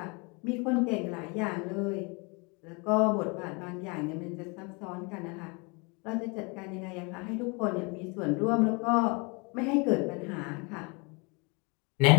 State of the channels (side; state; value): right; quieter; 30.7 dB